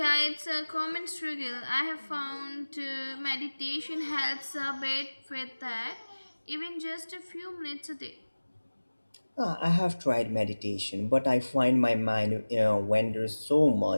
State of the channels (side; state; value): both; inverted; correlation -1.00